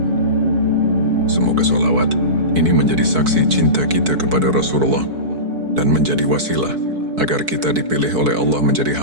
Semoga solawat ini menjadi saksi cinta kita kepada Rasulullah dan menjadi wasilah agar kita dipilih oleh Allah menjadi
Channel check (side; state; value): left; late; 4.6 ms